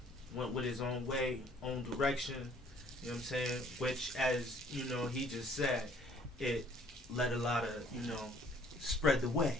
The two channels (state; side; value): normal; both; correlation 0.59